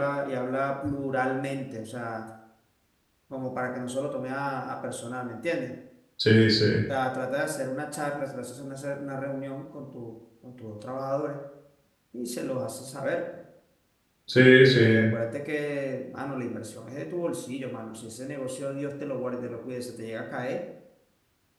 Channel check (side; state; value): both; identical; correlation 1.00